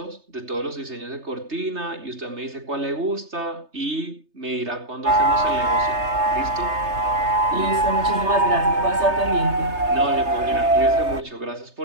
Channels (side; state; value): left; late; 3.3 ms